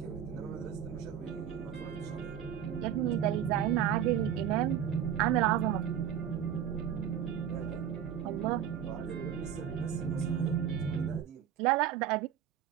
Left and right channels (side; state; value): left; quieter; 9.3 dB